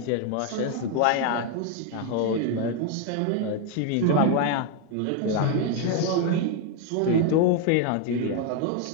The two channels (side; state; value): both; different; correlation 0.01